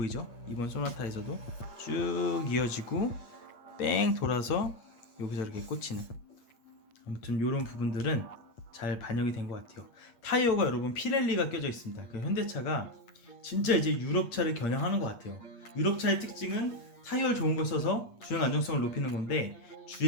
이번 소나타에서도 쭉 이어지고 뺑 돌아서 여기서 이렇게 꽂히는, 아무튼 이런 부분들은 잘 반영이 된 것 같아요. 타이어가 여러분 피렐리가 껴져 있습니다. 그 현대차가 진짜 이제 유럽차를 겨냥하는 것 같아요. 유럽차의 특징은 타이어를 좋은 걸 써서 주행 안정성을 높이는 건데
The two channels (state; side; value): late; right; 8.6 ms